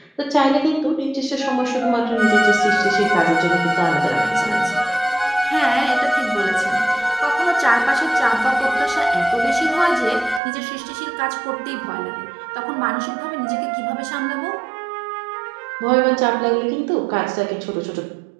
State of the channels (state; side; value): drops out; left; at 10.4 s